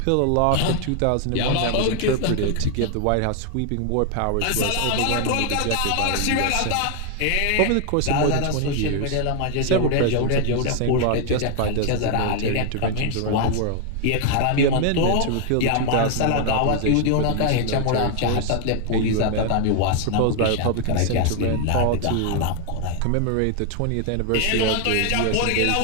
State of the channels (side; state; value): both; different; correlation 0.00